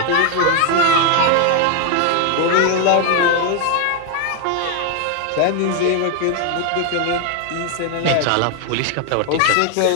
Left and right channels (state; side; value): different; both; correlation 0.01